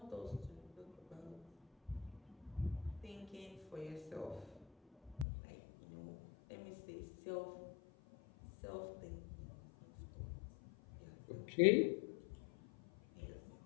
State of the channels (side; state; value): right; drops out; at 5.2 s